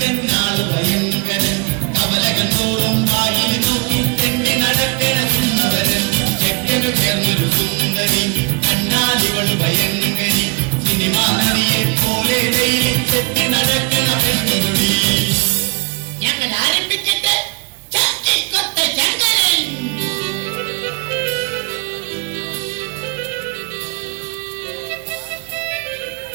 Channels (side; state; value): left; quieter; 30.8 dB